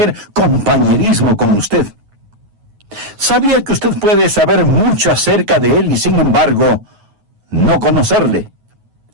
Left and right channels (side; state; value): left; late; 9.4 ms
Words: compañerismo con usted. ¿Sabía que usted puede saber mucho acerca de Él y sin embargo no conocerle?